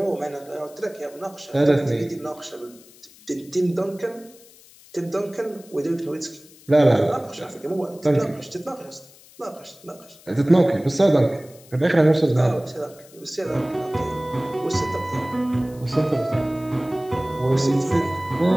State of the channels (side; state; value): left; noise; hiss, 24 dB below the sound